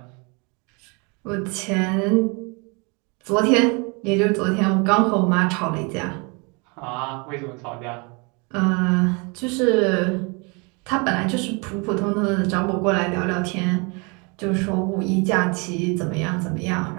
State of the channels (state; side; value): quieter; left; 31.1 dB